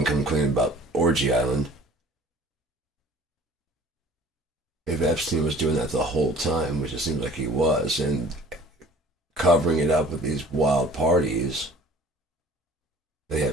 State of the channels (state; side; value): normal; both; correlation 0.48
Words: come clean about Orgy Island, if Epstein was doing that the whole time, which it seems like he was, and covering it up with these wild parties, they